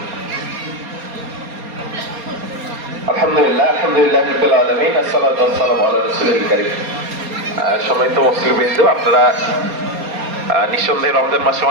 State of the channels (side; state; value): left; late; 4.3 ms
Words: আলহামদুলিল্লাহ রাব্বিল আলামিন, আসসালাতু ওয়াসসালামু আলা রাসূলিল কারীম। সম্মানিত মুসলিমবৃন্দ, আপনারা নিঃসন্দেহে রমজান মাসে